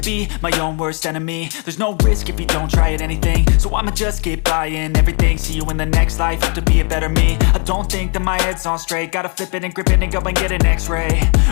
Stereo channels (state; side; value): quieter; right; 37.4 dB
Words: my own worst enemy. There's no risk if you don't try at anything, so I'ma just keep buying everything. See you in the next life, have to be a better me. I don't think that my head's on straight, gotta flip it and grip it and go and get an x-ray.